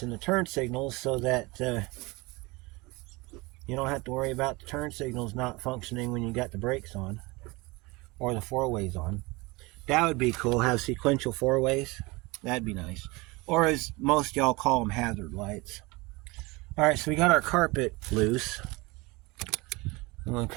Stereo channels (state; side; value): quieter; left; 24.2 dB